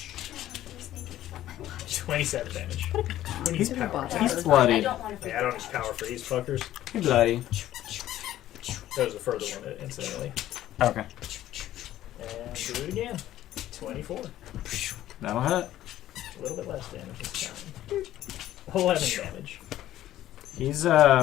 27 damage. Who needs He's power? about He's to- I bloodied. don't want to Yeah, I don't need power for these fuckers. He's bloody. That was the further one, incidentally. Okay. And do it again. 24. That'll hit. A little bit less damage this time. 11 damage. He's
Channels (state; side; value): quieter; right; 13.4 dB